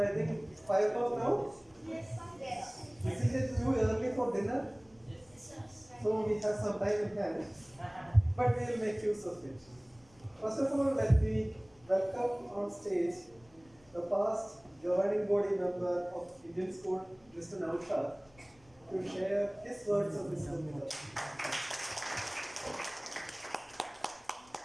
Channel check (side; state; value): left; noise; rumble, 29 dB below the sound